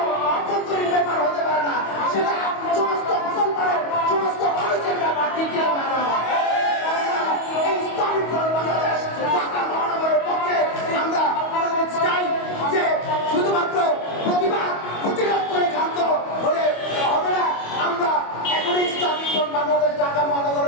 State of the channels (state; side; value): late; right; 25 ms